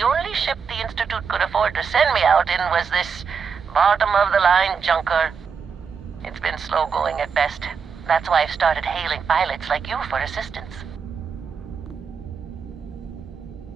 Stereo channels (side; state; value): left; quieter; 6.1 dB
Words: only ship the Institute could afford to send me out in was this bottom-of-the-line junker. It's been slow going at best. That's why I've started hailing pilots like you for assistance.